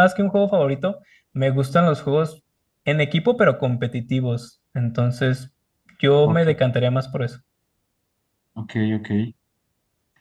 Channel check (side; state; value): both; identical; correlation 1.00